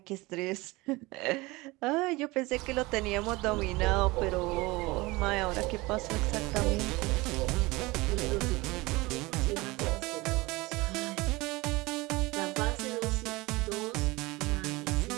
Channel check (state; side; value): quieter; left; 22.2 dB